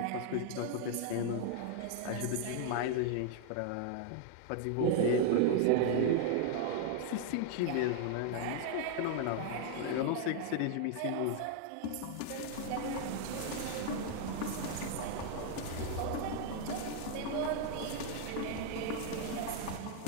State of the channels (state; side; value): different; both; correlation 0.00